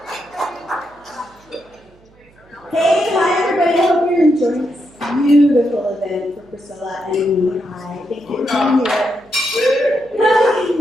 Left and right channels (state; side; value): noise; right; hum, 30 dB below the sound